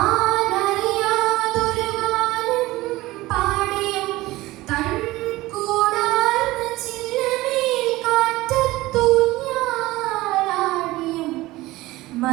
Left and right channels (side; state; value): left; quieter; 18.6 dB